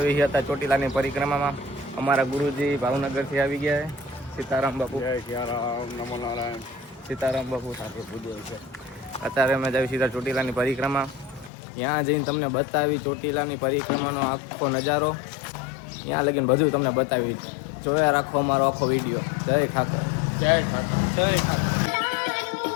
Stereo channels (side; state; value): right; drops out; at 11.5 s